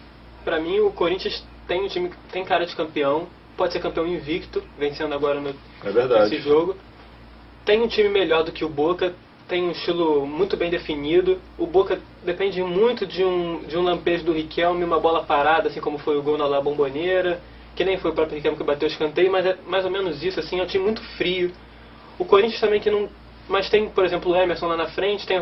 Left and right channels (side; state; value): both; identical; correlation 1.00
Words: Para mim, o Corinthians tem um time que tem cara de campeão, pode ser campeão invicto, vencendo agora nesse jogo. Tem um time melhor do que o Boca, tem um estilo muito bem definido. O Boca depende muito de um lampejo do Riquelme, uma bola parada, assim como foi o gol na La Bombonera, que nem foi o próprio Riquelme que bateu o escanteio, mas é mais ou menos isso, assim, é um time muito frio. O Corinthians também que não Mas tem, por exemplo, o Emerson lá na frente, tem